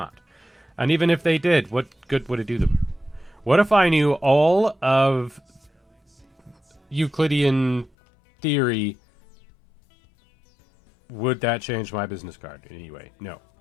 And even if they did, what good would it do them? What if I knew all of Euclidean theory? Would that change my business card in any way? No.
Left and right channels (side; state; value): right; drops out; at 7.9 s